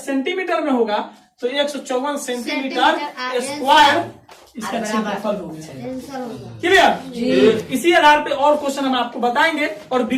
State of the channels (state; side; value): identical; both; correlation 1.00